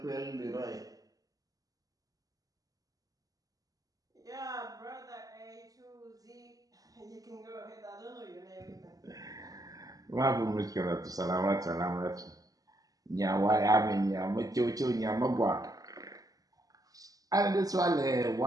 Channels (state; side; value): late; left; 0.17 ms